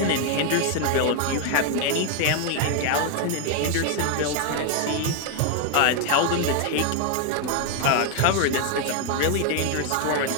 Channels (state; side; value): different; both; correlation 0.01